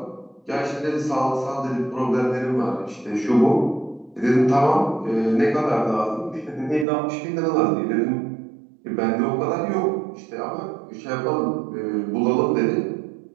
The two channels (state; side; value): drops out; left; at 6.9 s